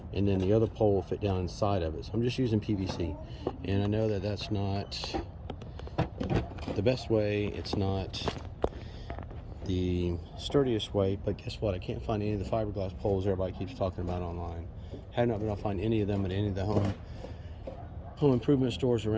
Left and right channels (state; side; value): identical; both; correlation 1.00